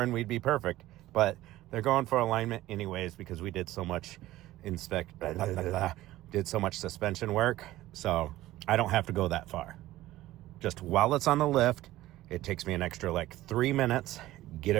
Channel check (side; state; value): left; quieter; 15.9 dB